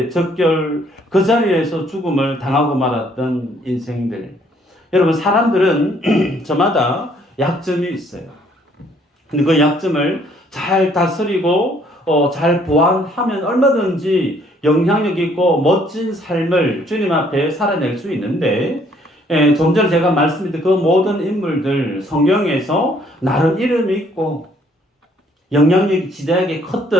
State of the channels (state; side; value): normal; both; correlation 0.64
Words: 적결 그 자리에서 죽음을 당하고 말았던 인생들. 여러분, 사람들은 저마다 약점이 있어요. 근데 그 약점을 잘 다스리고 잘 보완하면 얼마든지 영향력 있고 멋진 삶을 주님 앞에 살아낼 수 있는데 좀 전에 제가 말씀드린 그 모든 인물들 성경에서 나름 이름이 있고 영향력이 지대하게